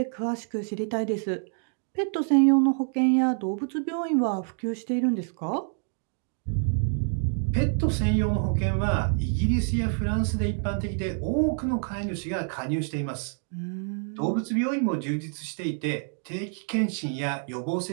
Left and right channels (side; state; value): left; silent; 60 dB below the other